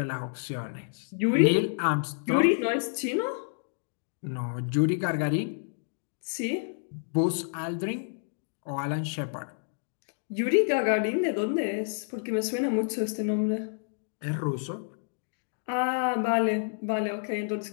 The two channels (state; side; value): silent; right; digital silence